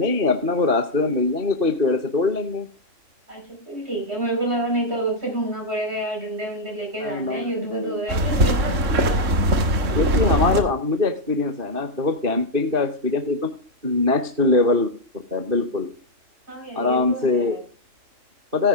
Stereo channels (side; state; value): left; late; 3.6 ms